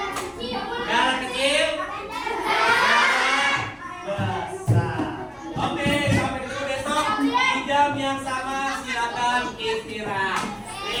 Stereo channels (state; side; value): identical; both; correlation 1.00